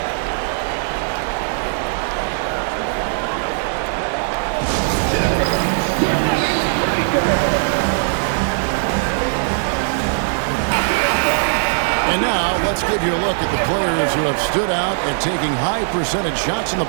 And now, let's give you a look at the players who have stood out and taking high percentage shots in the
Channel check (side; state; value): left; silent; digital silence